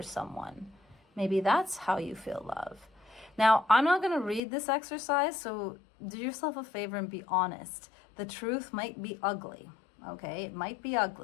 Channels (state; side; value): drops out; right; at 4.4 s